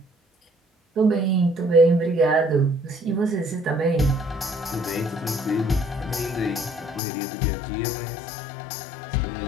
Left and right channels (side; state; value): right; drops out; at 7.0 s